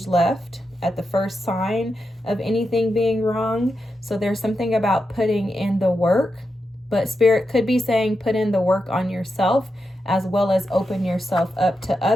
left at the first sign of anything being wrong. So there's something about putting in the work, but Spirit could be saying put in the work on yourself as well as open yourself up to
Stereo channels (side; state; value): both; normal; correlation 0.87